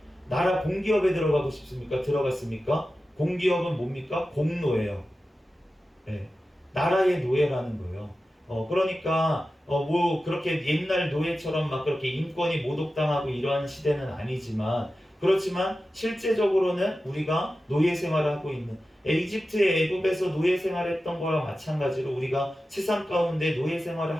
나라 공기업에 들어가고 싶습니까? 들어갔습니까? 공기업은 뭡니까? 공노예요. 네. 나라의 노예라는 거예요. 그러니까 뭐 그렇게 옛날 노예처럼 막 그렇게 인권이 모독당하고 이러한 시대는 아니지만, 그렇지만 실제적으로는 우리가 노예 생활을 하고 있는, 이집트의 애굽에서 노예 생활했던 거랑 마찬가지로 우리가 세상 가운데 노예 생활을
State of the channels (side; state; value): both; normal; correlation 0.93